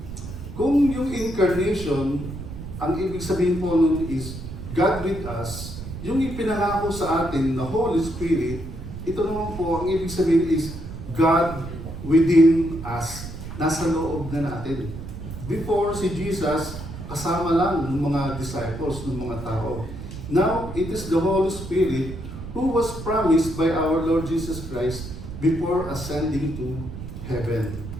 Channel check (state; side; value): noise; right; rumble, 10 dB below the sound